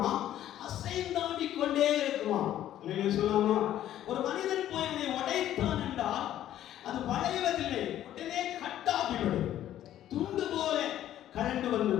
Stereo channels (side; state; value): right; quieter; 12.1 dB